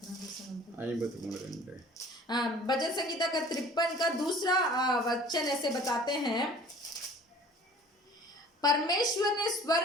53:2 भजन संगीता का 53 का दूसरा वचन ऐसे बताते हैं, परमेश्वर ने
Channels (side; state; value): both; normal; correlation 0.48